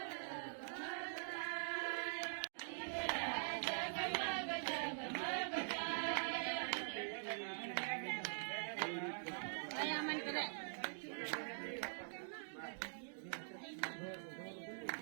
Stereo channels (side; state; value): left; silent; digital silence